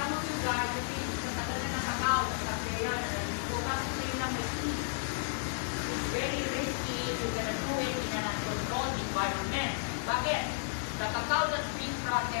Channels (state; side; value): silent; right; 56 dB below the other